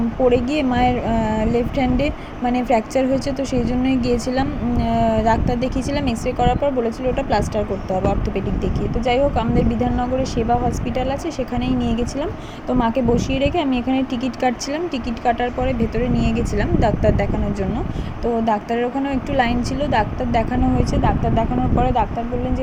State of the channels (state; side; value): identical; both; correlation 1.00